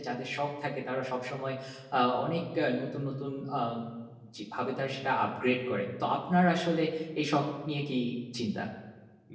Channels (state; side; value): identical; both; correlation 1.00